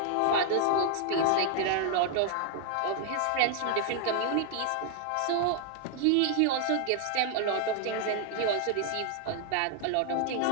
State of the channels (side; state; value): both; different; correlation 0.00